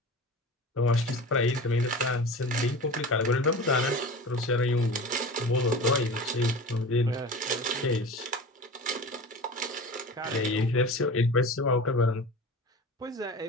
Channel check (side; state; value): both; normal; correlation 0.34